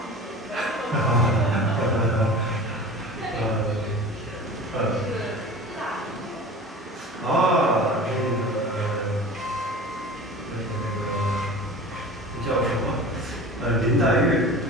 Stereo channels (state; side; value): normal; both; correlation 0.37